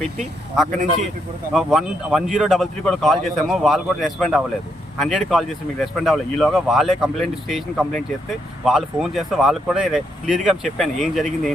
పెట్టి అక్కడ నుంచి 1033 కూడా కాల్ చేసాము, వాళ్ళు కూడా రెస్పాండ్ అవ్వలేదు. 100 కాల్ చేసి మీకు రెస్పాండ్ అవ్వలేదు. ఈలోగా వాళ్ళే స్టేషన్ కంప్లైంట్ చేస్తే వాళ్ళు ఫోన్ చేస్తే వాళ్ళకి కూడా క్లియర్గా చెప్పాను ఏం జరిగింది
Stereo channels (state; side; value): normal; both; correlation 0.77